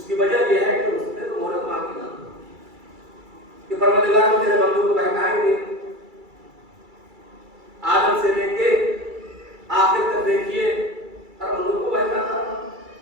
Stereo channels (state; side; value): late; left; 2.3 ms